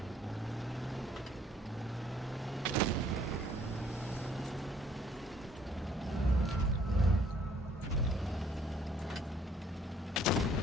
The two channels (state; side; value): normal; both; correlation 0.62